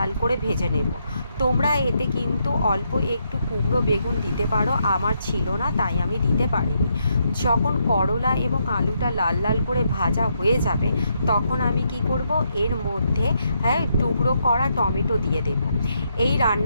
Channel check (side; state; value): both; inverted; correlation -0.78